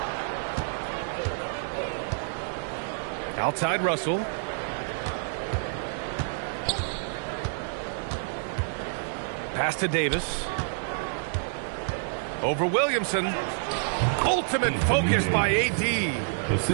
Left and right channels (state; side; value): silent; left; 56 dB below the other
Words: Outside Russell. Pass to Davis. Over Williamson. Ultimate focus by AD.